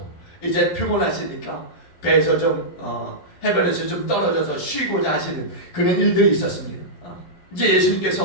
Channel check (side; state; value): right; late; 11 ms